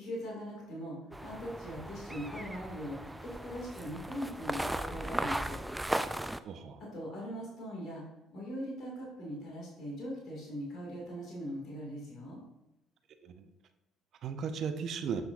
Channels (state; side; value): normal; both; correlation 0.79